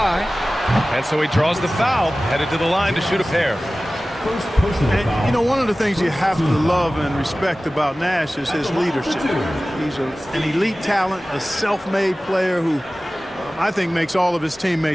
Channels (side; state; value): both; normal; correlation 0.97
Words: And so he draws the foul, headed to the line to shoot a pair. And, you know, one of the things you have to love and respect about Nash is his leadership. He's an elite talent, a self-made player who I think makes all of his